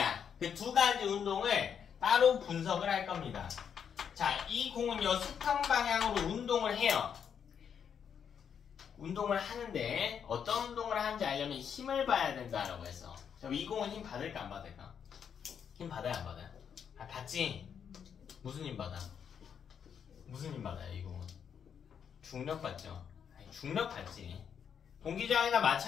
그 두 가지 운동을 따로 분석을 할 겁니다. 자, 이 공은요 수평 방향으로 운동을 해요. 운동을 하는데 어떤 운동을 하는지 알려면 힘을 봐야 된다라고 해서. 자, 이 공은 힘 받을까 안 받을까? 힘 받아요 안 받아요? 아, 받지. 무슨 힘 받아? 무슨 힘 받아요 이 공은? 중력 받죠. 아니, 중력 받지. 공기저항이나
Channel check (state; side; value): quieter; right; 7.7 dB